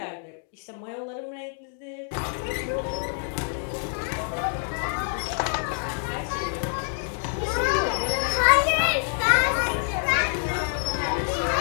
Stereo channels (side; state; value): right; silent; 60 dB below the other